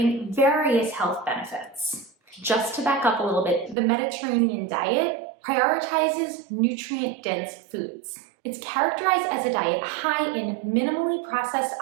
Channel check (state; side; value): drops out; left; at 3.8 s